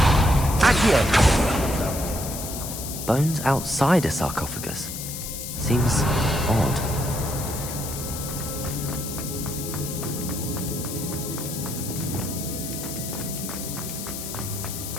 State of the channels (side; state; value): left; noise; hiss, 7 dB below the sound